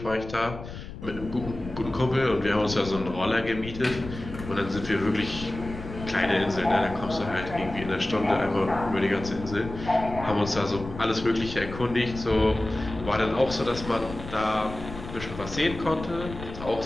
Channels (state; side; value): noise; left; rumble, 11 dB below the sound